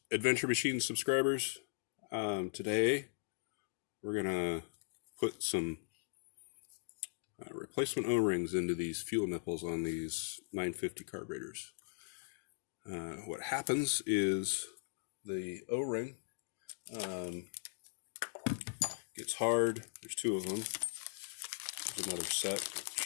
Adventure Machine subscribers. Today we're gonna put some replacement O-rings into these fuel nipples on these 950 carburetors. What happens is the O-ring gets hard. There's two of them. There's another set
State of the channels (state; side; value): silent; right; digital silence